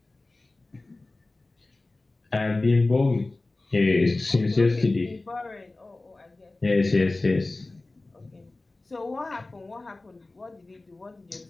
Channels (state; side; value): quieter; right; 3.1 dB